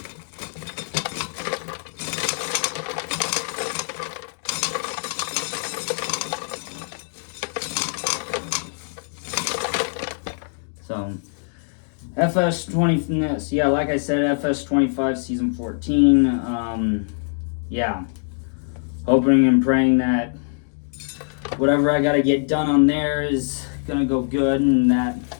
FS20, yeah, like I said, FS25 season 14. Yeah, hoping and praying that whatever I gotta get done on there is gonna go good, and that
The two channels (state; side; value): silent; right; digital silence